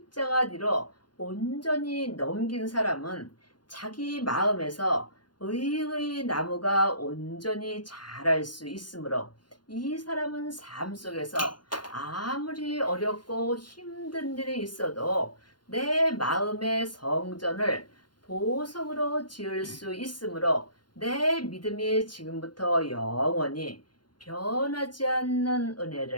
뒤로 온전히 넘긴 사람은 자기 마음에서 의의 나무가 온전히 자랄 수 있으므로 이 사람은 삶 속에서 아무리 어렵고 힘든 일이 있어도 내 마음의 성전을 보석으로 지을 수 있으므로 내 믿음이 지금부터 영원히 변하지 않는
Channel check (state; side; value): late; right; 0.71 ms